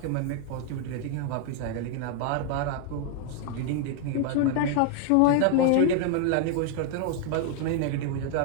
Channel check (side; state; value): both; different; correlation 0.00